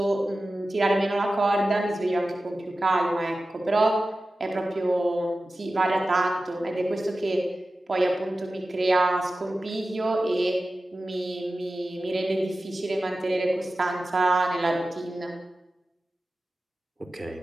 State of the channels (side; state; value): both; normal; correlation 0.95